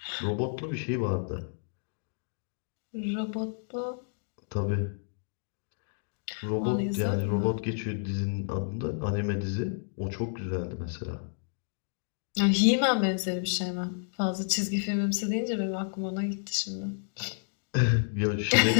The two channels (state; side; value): silent; right; digital silence